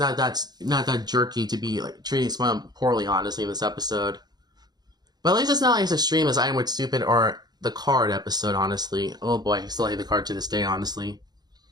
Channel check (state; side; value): late; left; 0.20 ms